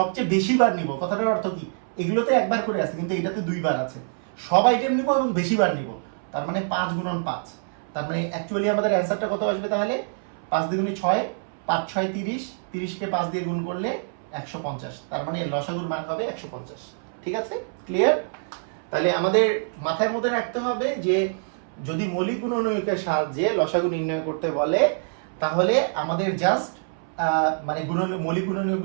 বেশি বার নিব। কথাটার অর্থ কি? এগুলোতে একবার করে আছে কিন্তু এটাতে 2 বার আছে, সব আইটেম নিব এবং বেশি বার নিব, তার মানে 5 গুণন 5। তার মানে অ্যাকচুয়ালি আমাদের অ্যান্সারটা কত আসবে তাহলে? 5 দ্বিগুণে 6, 5 6 30, 30 কে 5 দিয়ে গুণ করলে 150, তার মানে লসাগুর মান হবে 150। ঠিক আছে? ক্লিয়ার? তাহলে আমাদের মাথার মধ্যে রাখতে হবে যে যদি মৌলিক গুণনীয়কের সাহায্যে লসাগু নির্ণয় করতে বলে, তাহলে আমাদের জাস্ট মানে মৌলিক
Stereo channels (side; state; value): left; silent; 62 dB below the other